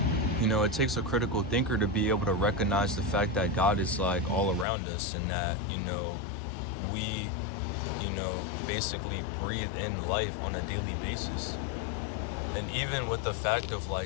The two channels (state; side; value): drops out; right; at 4.7 s